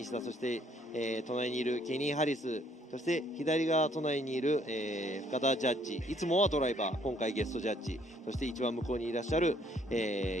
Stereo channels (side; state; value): both; normal; correlation 0.64